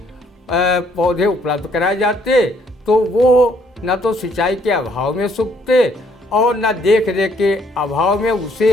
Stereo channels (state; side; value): normal; both; correlation 0.66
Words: पौधे उपलब्ध कराए जाते तो वो न तो सिंचाई के अभाव में सूखते और न देख रेख के अभाव में उसे